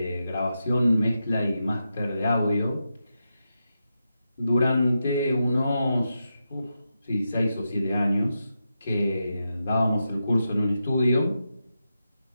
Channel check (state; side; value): inverted; both; correlation -0.88